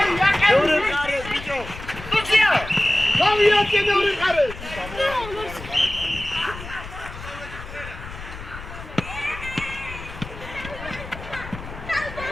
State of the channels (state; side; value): noise; left; rumble, 12 dB below the sound